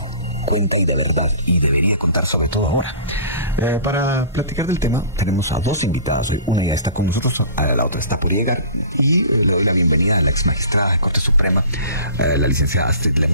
cuenta y de verdad, y debería contar sobre todo ahora. Para platicar del tema tenemos a dos invitadas hoy. Una ya está con nosotros, la otra está por llegar, y le doy la bienvenida a la ex magistrada de Corte Suprema, la licenciada Astrid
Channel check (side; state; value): both; inverted; correlation -0.42